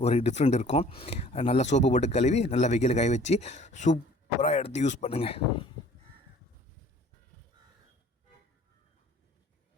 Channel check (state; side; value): normal; both; correlation 0.52